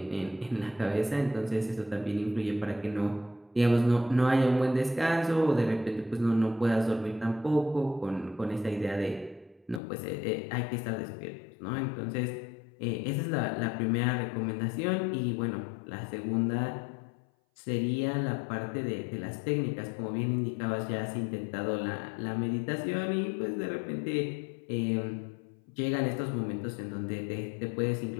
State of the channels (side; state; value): right; drops out; at 9.8 s